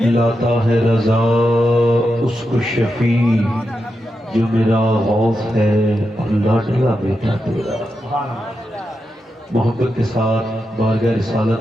لاتا ہے رضا اس کو شفیع، جو میرا غوث ہے اور لاڈلا بیٹا تیرا۔ محبت کے ساتھ بارگاہ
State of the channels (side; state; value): both; normal; correlation 0.87